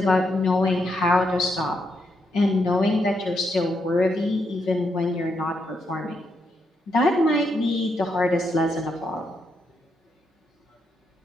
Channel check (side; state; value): both; normal; correlation 0.80